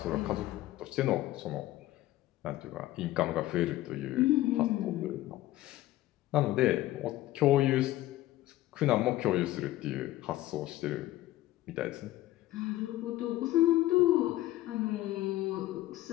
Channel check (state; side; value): quieter; right; 15.8 dB